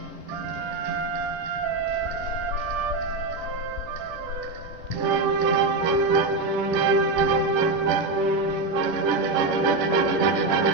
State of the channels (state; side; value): quieter; left; 3.3 dB